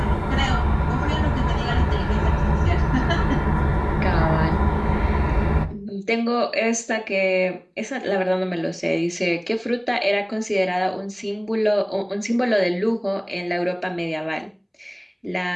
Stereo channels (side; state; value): both; identical; correlation 1.00